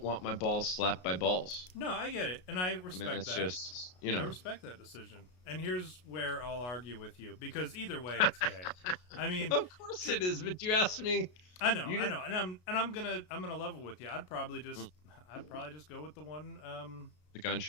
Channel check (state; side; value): late; right; 33 ms